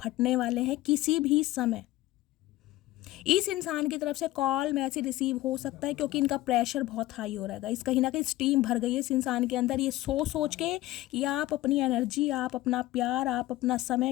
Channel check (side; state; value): right; quieter; 16.9 dB